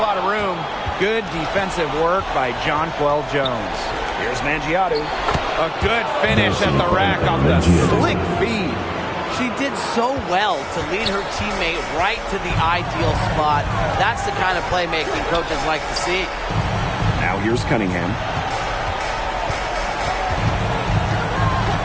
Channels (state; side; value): identical; both; correlation 1.00